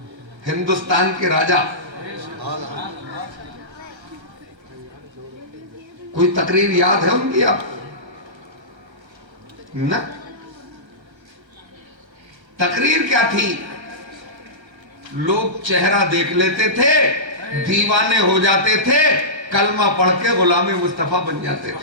हिंदुस्तान के राजा, कोई तकरीर याद है उनकी आप ना? तकरीर क्या थी? लोग चेहरा देख लेते थे, दीवाने हो जाते थे, कलमा पढ़ के गुलामी मुस्तफा बन जाते थे।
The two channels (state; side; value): late; left; 1.3 ms